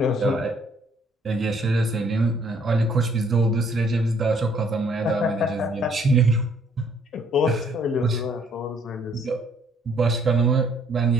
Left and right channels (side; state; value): both; normal; correlation 0.64